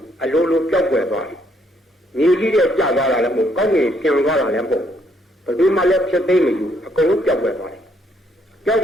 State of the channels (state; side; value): normal; both; correlation 0.70